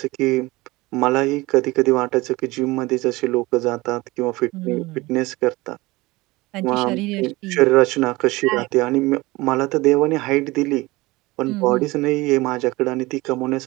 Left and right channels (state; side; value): quieter; left; 21.4 dB